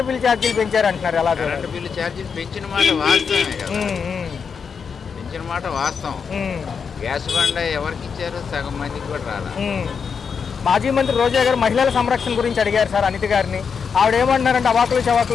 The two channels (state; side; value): quieter; right; 6.2 dB